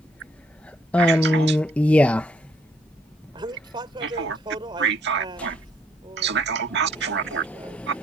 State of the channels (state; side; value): normal; both; correlation 0.67